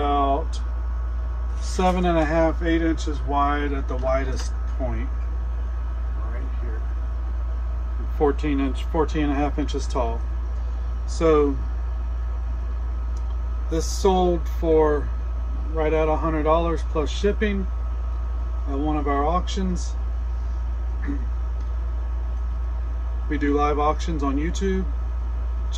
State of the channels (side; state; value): both; identical; correlation 1.00